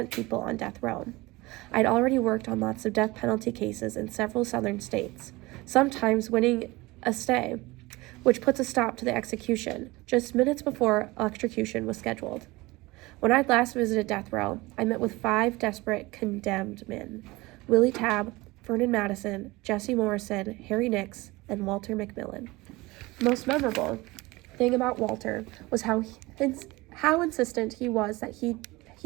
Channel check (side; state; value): left; quieter; 21.6 dB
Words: people on death row. I'd already worked on lots of death penalty cases in several southern states, sometimes winning a stay, which puts a stop to the execution just minutes before electrocution was scheduled. When I'd last visited death row, I met with 5 desperate condemned men: Willie Tabb, Vernon Madison, Jesse Morrison, Harry Nix, and Walter McMillan. The most memorable thing about Walter was how insistent he was that